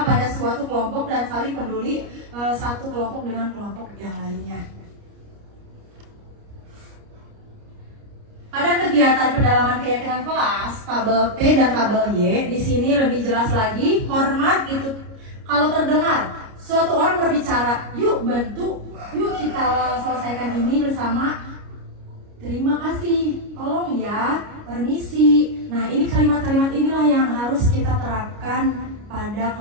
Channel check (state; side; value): late; left; 29 ms